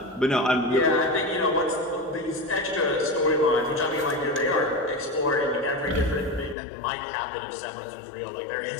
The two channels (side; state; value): right; drops out; at 6.6 s